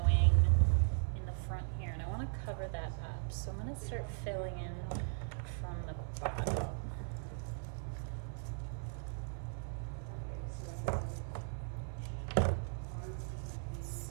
in the front here, and I want to cover that up. So I'm going to start filling in from the bottom.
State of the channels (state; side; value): silent; left; 52 dB below the other